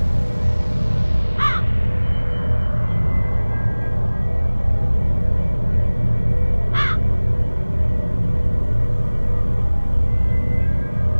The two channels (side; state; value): both; inverted; correlation -1.00